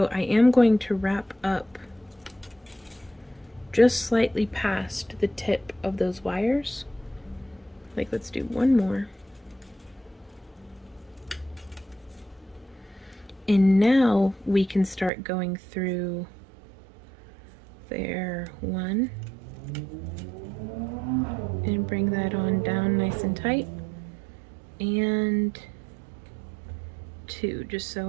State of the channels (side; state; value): left; drops out; at 15.1 s